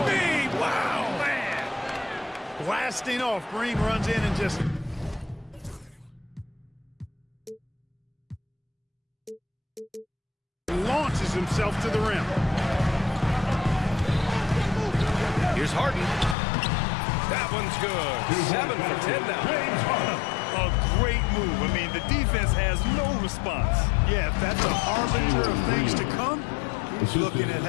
me? Wow, man. Blasting off. Green runs in and just... launches himself to the rim. Here's Harden. That one's good. 7 for 10 now. A great move. I mean, the defense has no response. Yeah, if that's a harbinger of things to come, he's looking at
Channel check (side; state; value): right; drops out; at 16.4 s